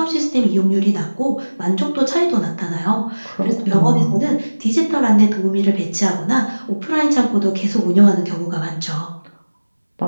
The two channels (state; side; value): inverted; both; correlation -1.00